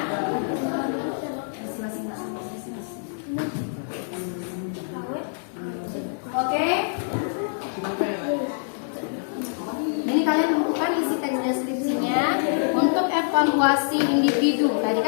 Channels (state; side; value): silent; right; digital silence